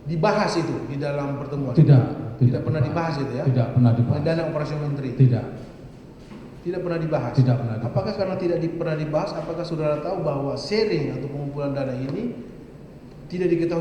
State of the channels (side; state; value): both; identical; correlation 1.00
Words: dibahas itu di dalam pertemuan? Tidak pernah dibahas itu ya? Tidak pernah dibahas. Dana operasi menteri Tidak pernah dibahas. Tidak pernah dibahas. Apakah karena tidak pernah dibahas? Apakah saudara tahu bahwa sharing atau pengumpulan dana ini tidak